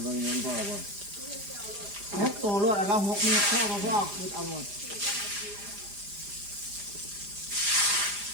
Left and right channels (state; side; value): late; left; 4.9 ms